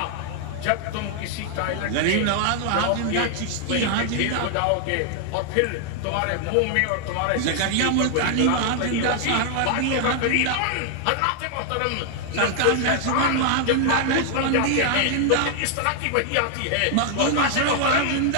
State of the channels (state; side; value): different; both; correlation 0.00